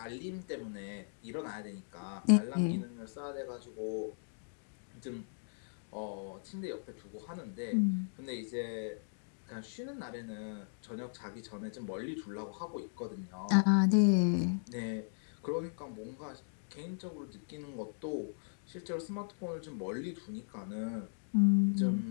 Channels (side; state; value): right; silent; digital silence